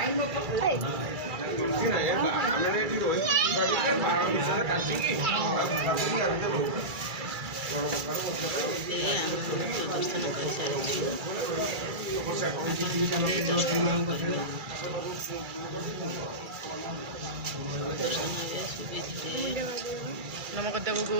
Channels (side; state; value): left; late; 2.3 ms